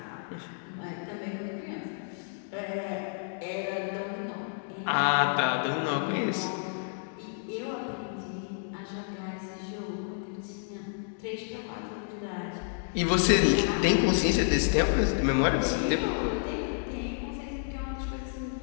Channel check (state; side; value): silent; right; digital silence